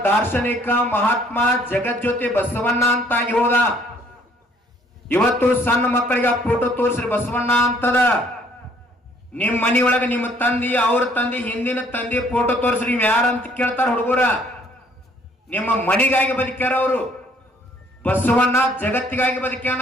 ದಾರ್ಶನಿಕ ಮಹಾತ್ಮ ಜಗಜ್ಯೋತಿ ಬಸವಣ್ಣ ಅಂತಾಗಿ ಹೋದ. ಇವತ್ತು ಸಣ್ಣ ಮಕ್ಕಳಿಗೆ ಆ ಫೋಟೋ ತೋರಿಸ್ರಿ ಬಸವಣ್ಣ ಅಂತದ. ನಿಮ್ ಮನಿಯೊಳಗೆ ನಿಮ್ಮ ತಂದಿ, ಅವ್ರ ತಂದಿ, ಹಿಂದಿನ ತಂದಿ ಫೋಟೋ ತೋರಿಸ್ರಿ. ನೀವು ಯಾರಂತ ಕೇಳ್ತಾರ ಹುಡುಗರ. ನಿಮ್ಮ ಮನಿಗಾಗಿ ಬದುಕ್ಯಾರ ಅವರು. ಬಸವಣ್ಣ ಜಗತ್ತಿಗಾಗಿ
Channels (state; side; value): normal; both; correlation 0.62